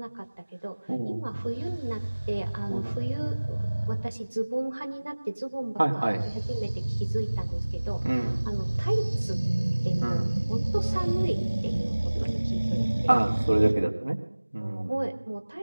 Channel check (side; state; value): both; inverted; correlation -1.00